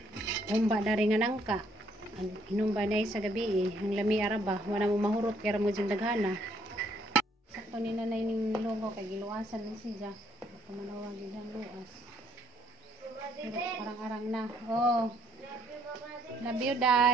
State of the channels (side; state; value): both; normal; correlation 0.67